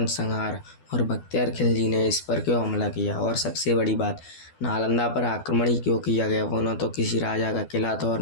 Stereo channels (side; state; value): right; late; 12 ms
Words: और बख्तियार खिलजी ने इस पर क्यों हमला किया, और सबसे बड़ी बात, नालंदा पर आक्रमण ही क्यों किया गया। वो न तो किसी राजा का किला था और